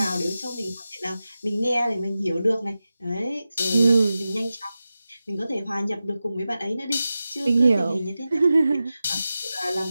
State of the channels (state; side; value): inverted; both; correlation -0.94